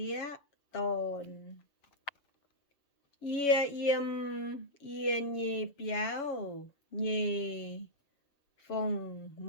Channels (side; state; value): right; late; 7.1 ms